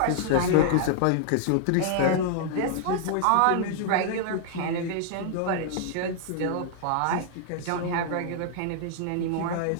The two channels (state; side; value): different; both; correlation -0.01